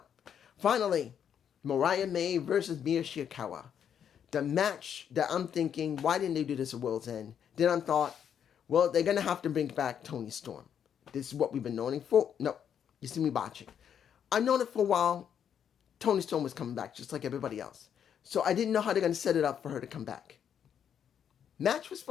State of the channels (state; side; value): quieter; right; 8.5 dB